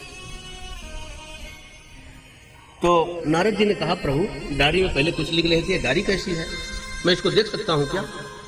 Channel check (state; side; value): identical; both; correlation 1.00